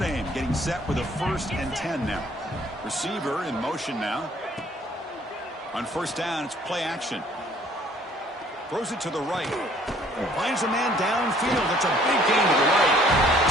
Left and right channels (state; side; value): normal; both; correlation 0.58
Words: getting set with a 1st and 10 now. Receiver in motion now. On 1st down, it's play action. Throws it to the right. Finds a man downfield. It's a big gain to the right.